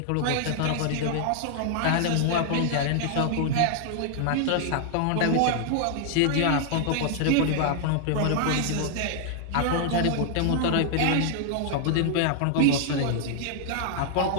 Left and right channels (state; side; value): different; both; correlation 0.00